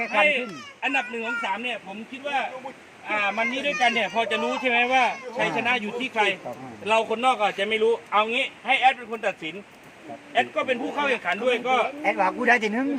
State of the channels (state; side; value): identical; both; correlation 1.00